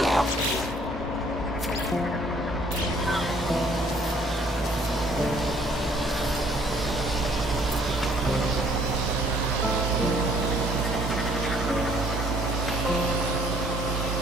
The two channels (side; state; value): both; normal; correlation 0.61